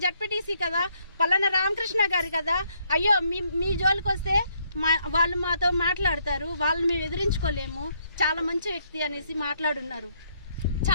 జడ్పీటీసీ కదా, పలానా రామకృష్ణ గారు కదా. అయ్యో మీ జోలికి వస్తే వాళ్ళు మాతో మాట్లాడతారు, వాళ్ళని మేము ఎదిరించుకోలేము, చాలా మంచి వ్యక్తి అనేసి మాట్లాడున్నారు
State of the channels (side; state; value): both; inverted; correlation -0.72